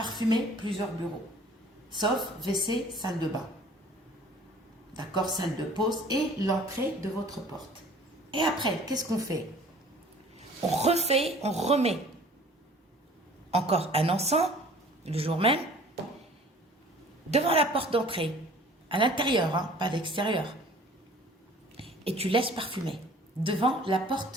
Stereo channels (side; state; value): both; normal; correlation 0.50